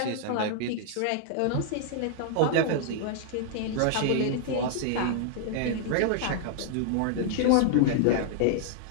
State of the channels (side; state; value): both; different; correlation -0.01